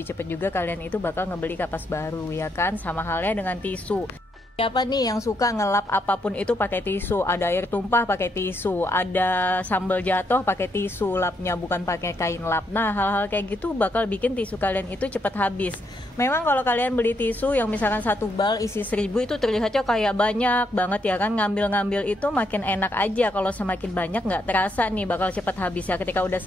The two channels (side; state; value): both; normal; correlation 0.77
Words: cepat juga kalian itu bakal ngebeli kapas baru ya kan. Sama halnya dengan tisu. Siapa nih yang suka ngelap apapun itu pakai tisu? Ada air tumpah pakai tisu, ada sambal jatuh pakai tisu lapnya, bukan pakai kain lap. Nah, hal-hal kayak gitu bakal bikin tisu kalian itu cepat habis. Memang kalau kalian beli tisu yang misalkan satu bal isi 1000 itu terlihatnya kayak banyak banget ya kan. Ngambil-ngambil itu makin enak aja. Kalau semakin banyak nggak terasa nih bakal cepat habis ya. Ketika udah